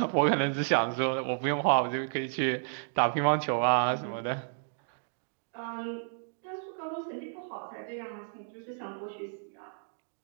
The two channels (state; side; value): silent; left; digital silence